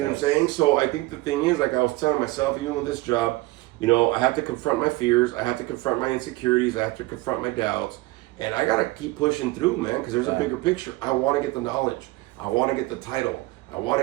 what I'm saying? So I think the thing is, I was telling myself, even with this job, You know, I have to confront my fears. I have to confront my insecurities. I have to confront my doubts. And I got to keep pushing through, man, because there's a bigger picture. I want to get the knowledge. I want to get the title. I want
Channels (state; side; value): quieter; left; 20.5 dB